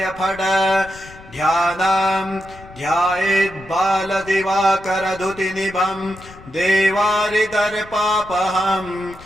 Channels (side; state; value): left; noise; rumble, 20 dB below the sound